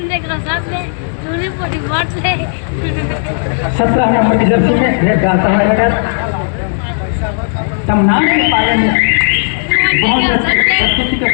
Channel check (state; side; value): silent; right; digital silence